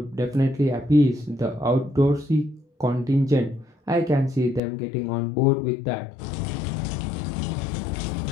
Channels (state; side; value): drops out; right; at 4.6 s